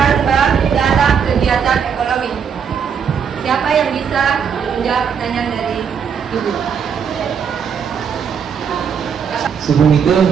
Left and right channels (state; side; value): quieter; left; 7.1 dB